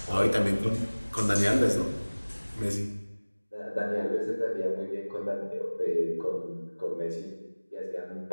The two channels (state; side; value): inverted; both; correlation -1.00